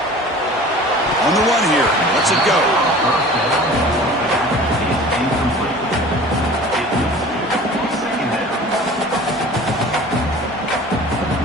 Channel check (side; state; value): both; normal; correlation 0.43